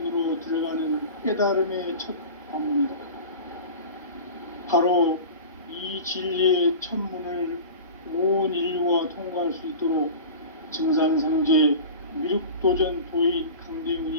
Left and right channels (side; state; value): both; inverted; correlation -0.35